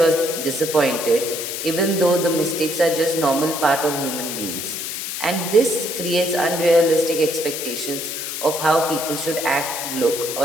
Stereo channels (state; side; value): noise; left; hiss, 5 dB below the sound